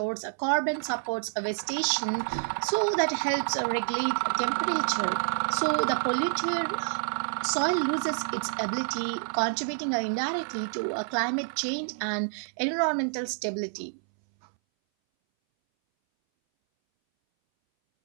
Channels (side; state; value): left; silent; 59 dB below the other